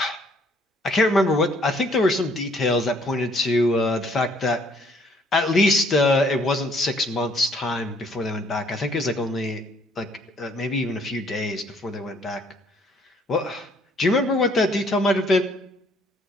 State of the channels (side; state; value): both; normal; correlation 0.63